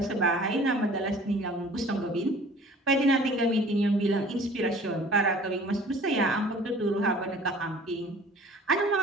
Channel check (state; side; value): normal; both; correlation 0.48